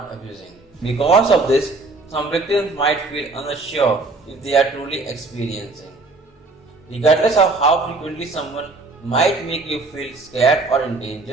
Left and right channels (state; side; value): quieter; left; 3.4 dB